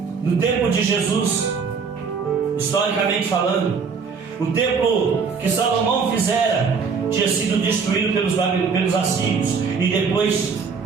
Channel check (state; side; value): quieter; left; 5.5 dB